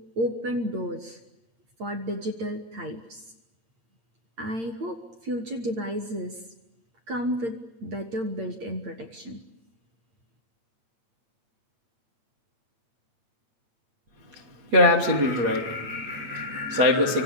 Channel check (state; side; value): late; left; 8.7 ms